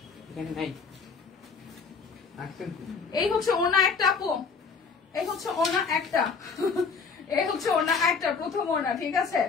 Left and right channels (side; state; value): right; quieter; 5.3 dB